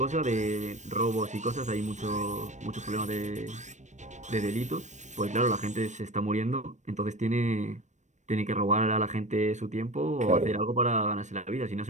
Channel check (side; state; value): left; late; 0.34 ms